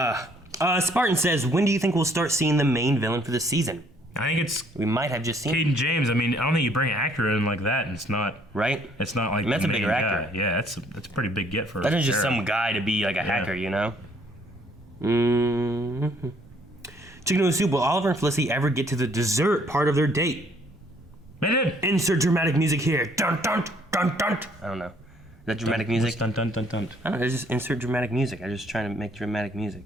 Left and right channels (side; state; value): both; normal; correlation 0.63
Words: says, when do you think we'll start seeing the main villain for this season? I think we might have just seen Cayden James. I mean, I don't think you bring an actor in like that, and it's not right. It's not like that's a bigger guy. actor. Yeah, that's a pretty big get for. That is just some guy to be like a hacker, you know. Chicken Noodle Soup. Will Oliver and Felicity ever get to the dessert part of their date? They did. Insert dramatic music here. Dun dun dun dun. I don't know. Is that dramatic music? Dun dun dun dun. I don't know. It's just insert dramatic music. I'm just trying to make dramatic music.